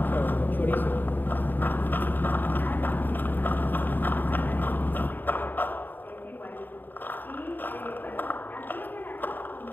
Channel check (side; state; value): right; late; 0.091 ms